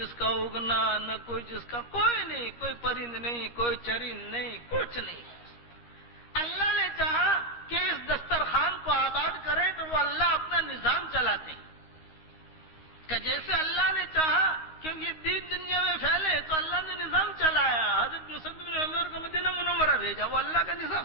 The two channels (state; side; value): late; right; 13 ms